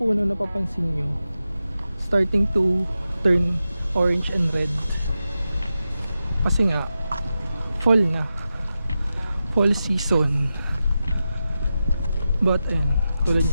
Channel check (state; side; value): inverted; both; correlation -0.91